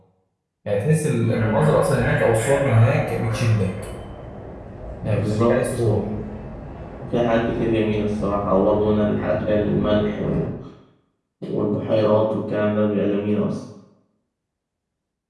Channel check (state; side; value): identical; both; correlation 1.00